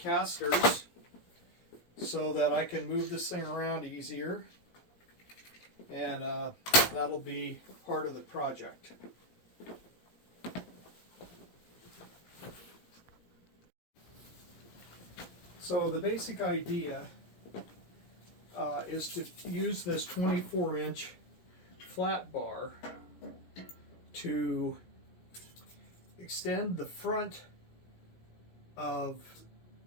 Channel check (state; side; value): late; right; 17 ms